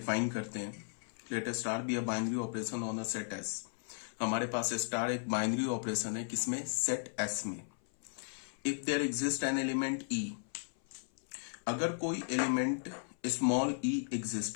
करते हैं। Let star B a binary operation on a set S. हमारे पास स्टार एक बाइनरी ऑपरेशन है, किसमें? सेट एस में। If there exist an element e, अगर कोई एलिमेंट स्मॉल ई एग्जिस्ट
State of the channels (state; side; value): silent; right; 54 dB below the other